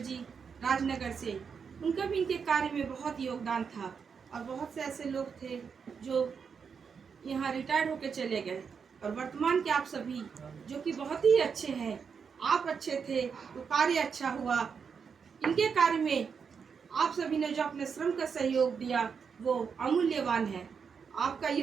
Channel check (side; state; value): left; quieter; 6.2 dB